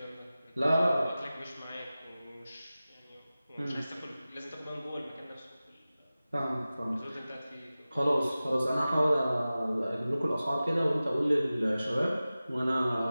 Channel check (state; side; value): inverted; both; correlation -0.96